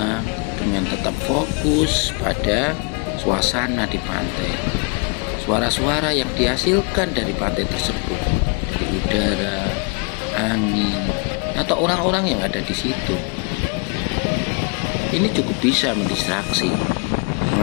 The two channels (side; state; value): right; quieter; 32.1 dB